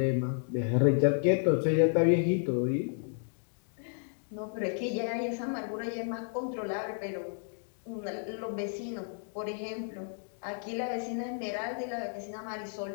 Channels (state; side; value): silent; right; digital silence